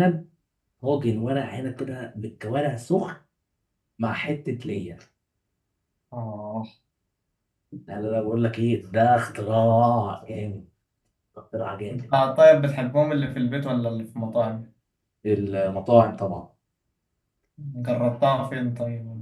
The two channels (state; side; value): identical; both; correlation 1.00